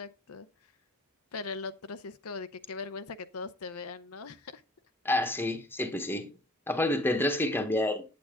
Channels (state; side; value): normal; both; correlation 0.53